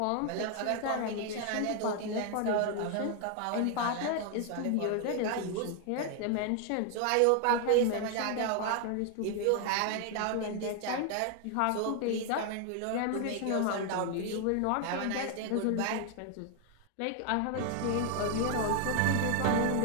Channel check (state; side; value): different; both; correlation 0.00